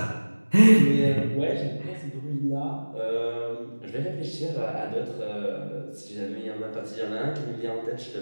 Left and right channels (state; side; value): inverted; both; correlation -1.00